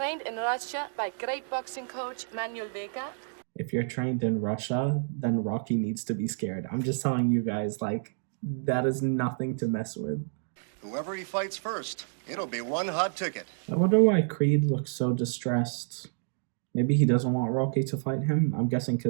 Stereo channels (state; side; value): silent; left; digital silence